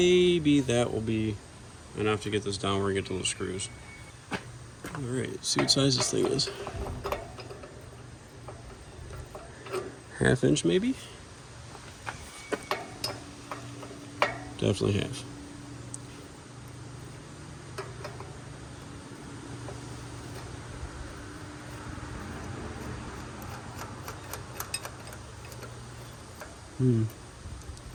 that will be enough to get this down where I get to those screws. Alright, see what size this thing is. 1/2 inch maybe? Definitely half.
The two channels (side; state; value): both; identical; correlation 1.00